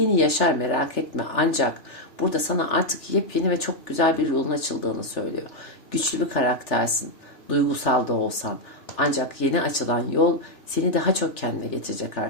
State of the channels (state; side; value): late; right; 3.4 ms